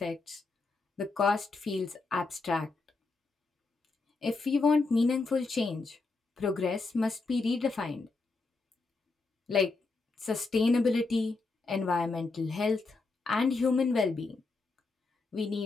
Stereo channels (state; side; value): quieter; right; 3.8 dB